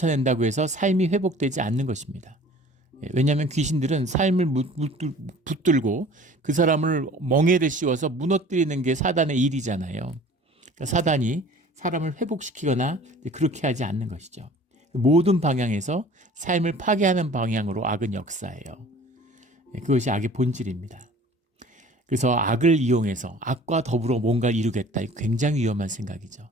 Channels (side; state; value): both; normal; correlation 0.47